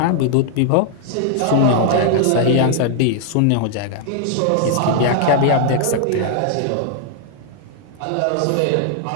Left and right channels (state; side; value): different; both; correlation 0.00